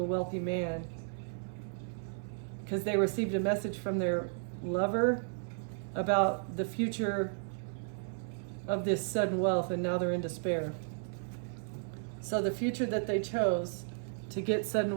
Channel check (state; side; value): silent; left; 55 dB below the other